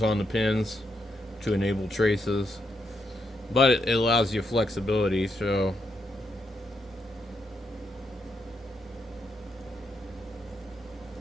on the pins to enable traces, but it allows you flexibility. So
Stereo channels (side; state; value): both; normal; correlation 0.80